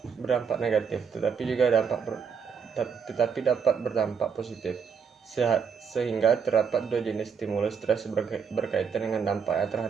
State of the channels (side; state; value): left; quieter; 6.5 dB